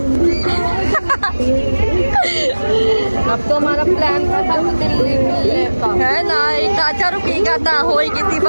अब तो हमारा प्लान था दिल्ली का है ना, एक काचा रुकेगा था, होई कितनी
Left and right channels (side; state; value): both; inverted; correlation -1.00